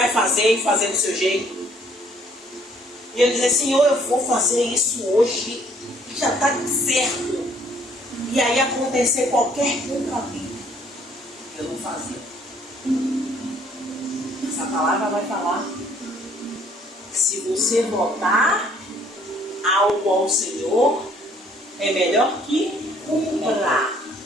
fazer e fazer do seu jeito. E eu dizer: Senhor, eu vou fazer isso hoje, já está certo. E aí acontecer qualquer contratempo, eu não fazia. Essa palavra vai falar: se você votar algo ao Senhor, é melhor que cumpra.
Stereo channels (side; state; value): both; normal; correlation 0.62